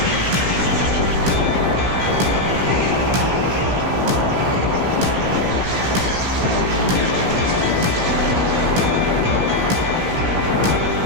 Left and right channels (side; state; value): left; late; 16 ms